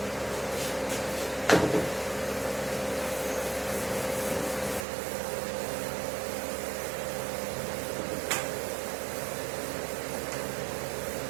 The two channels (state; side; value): drops out; left; at 4.9 s